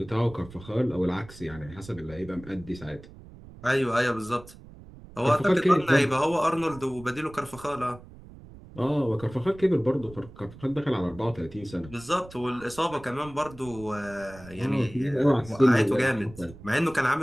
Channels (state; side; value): noise; right; rumble, 19 dB below the sound